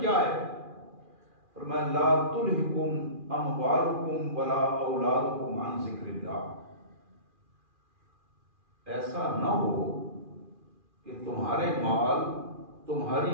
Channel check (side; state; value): left; late; 2.4 ms